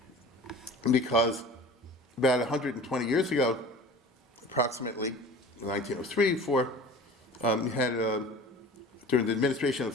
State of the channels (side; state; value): both; normal; correlation 0.40